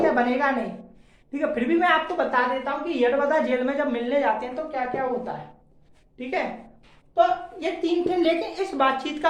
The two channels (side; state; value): both; identical; correlation 1.00